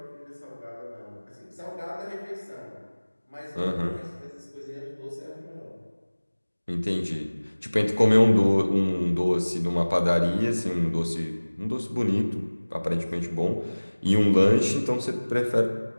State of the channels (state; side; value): inverted; both; correlation -1.00